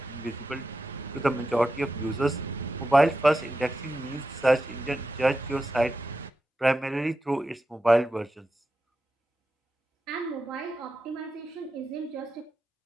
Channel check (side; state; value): both; normal; correlation 0.89